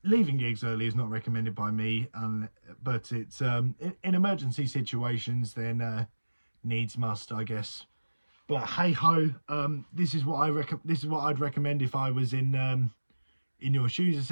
Leaving gigs early is not recommended by me, but it's in emergency situations then needs must, I guess. But hey ho, this is what I'd recommend if I was in your shoes.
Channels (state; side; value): inverted; both; correlation -1.00